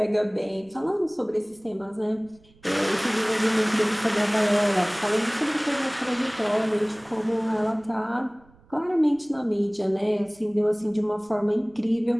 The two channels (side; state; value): right; noise; rumble, 29 dB below the sound